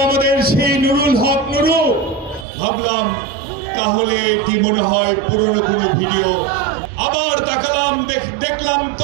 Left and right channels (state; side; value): drops out; left; at 2.5 s